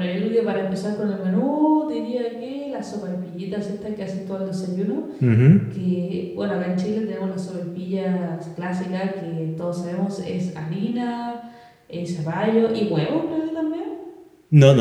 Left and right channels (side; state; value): both; identical; correlation 1.00